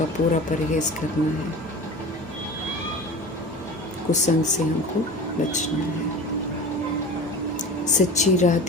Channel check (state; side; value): normal; both; correlation 0.35